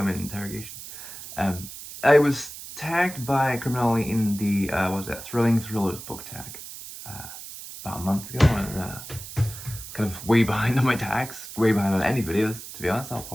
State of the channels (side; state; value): right; noise; hiss, 12 dB below the sound